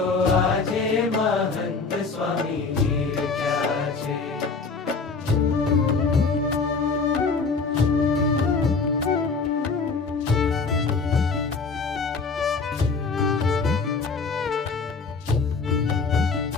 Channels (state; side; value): quieter; right; 4.5 dB